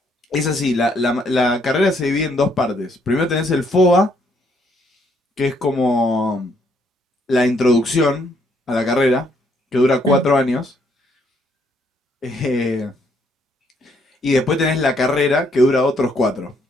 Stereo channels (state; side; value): normal; both; correlation 0.70